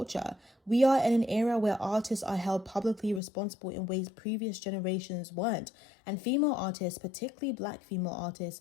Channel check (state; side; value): drops out; right; at 3.2 s